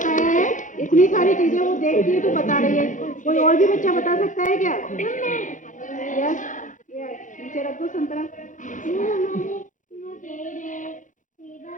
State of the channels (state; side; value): late; right; 0.37 ms